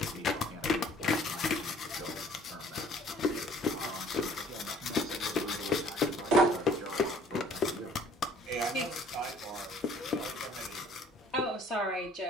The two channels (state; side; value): normal; both; correlation 0.55